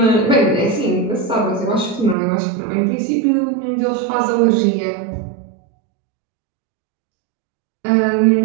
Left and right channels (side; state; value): left; drops out; at 2.1 s